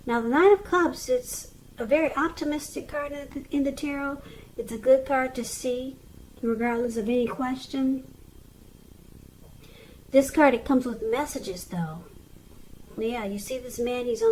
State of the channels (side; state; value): both; identical; correlation 1.00